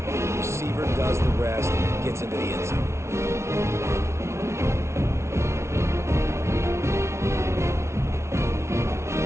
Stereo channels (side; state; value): left; late; 0.13 ms